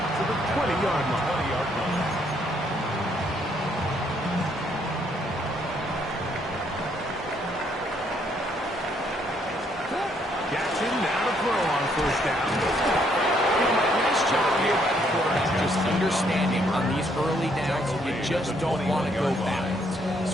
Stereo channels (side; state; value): both; normal; correlation 0.70